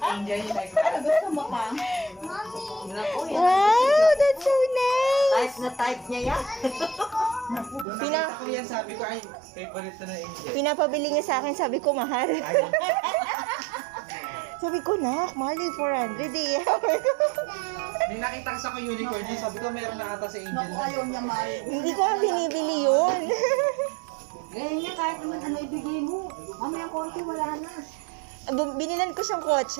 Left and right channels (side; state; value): left; drops out; at 7.9 s